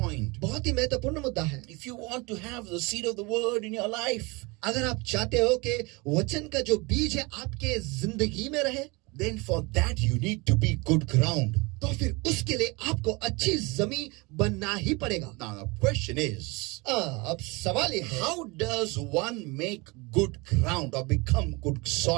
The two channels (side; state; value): left; quieter; 26.3 dB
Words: बहुत ही महत्वपूर्ण मुद्दा है। If you want to have the seed of the word in your life, अगर आप चाहते हो कि वचन का जो बीज है आपके जिंदगी में रहे, then for that you need to be good ground. तो फिर उसके लिए आपको अच्छी जमीन बनना ही पड़ेगा। Now the question is, अब सवाल ये है how does one make good ground or become good